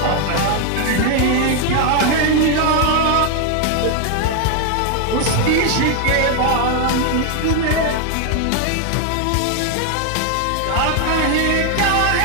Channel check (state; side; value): different; both; correlation 0.01